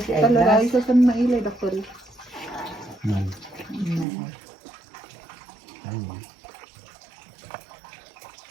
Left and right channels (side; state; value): left; drops out; at 4.0 s